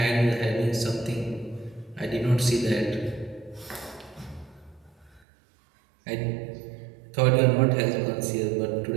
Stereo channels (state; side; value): drops out; left; at 5.2 s